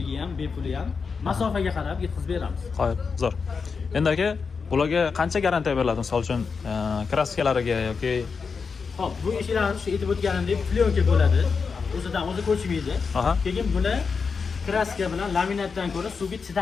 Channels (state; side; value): quieter; right; 5.3 dB